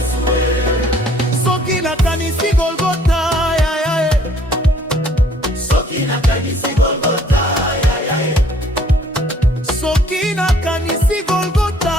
Soki na kanisi Golgota ya ya Soki na kanisi Golgotha Soki na kanisi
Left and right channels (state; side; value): normal; both; correlation 0.59